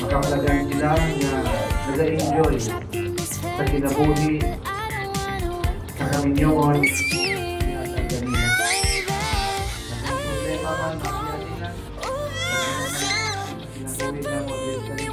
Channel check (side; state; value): both; identical; correlation 1.00